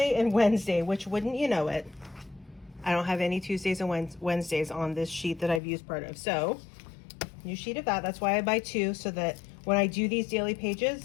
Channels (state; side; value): drops out; right; at 5.6 s